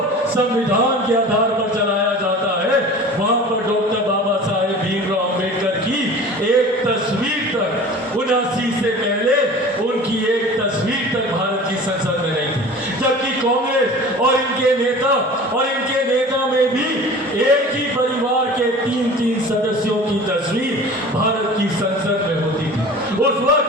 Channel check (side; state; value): both; normal; correlation 0.40